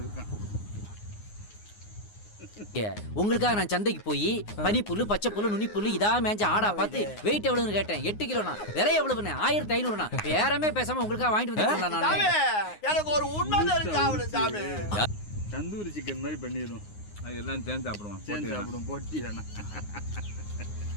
இருக்கான். உங்களுக்காக நான் சந்தைக்கு போய் பனிப்புல்லு, பச்சை புல்லு, நுனி புல்லு இதா மேஞ்ச ஆடா பார்த்து வெயிட் எவ்வளவுன்னு கேட்டேன். 8 கிலோண்ணா. விலை எவ்வளவுண்ணே? 1500ண்ணா. பேரமே பேசாம உங்களுக்காக வாங்கிட்டு வந்துருக்கேன் நான். எனக்கு ஒரு உண்மை தெரிஞ்சு சாமி. தந்தூரி சிக்கன் மாதிரி பண்ணிடுவோம். அது எல்லாம் சேர்ந்து சாப்பிடுவோம். சேர்ந்து சாப்பிடுவோம். போட்டி வேணாம்.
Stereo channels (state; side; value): late; right; 9.6 ms